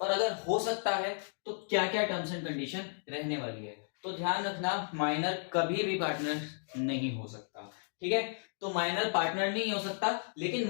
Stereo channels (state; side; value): silent; right; digital silence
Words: और अगर हो सकता है तो क्या क्या टर्म्स एंड कंडीशन रहने वाली है। तो ध्यान रखना, माइनर कभी भी पार्टनर नहीं हो सकता, ठीक है। तो माइनर पार्टनर नहीं हो सकता, लेकिन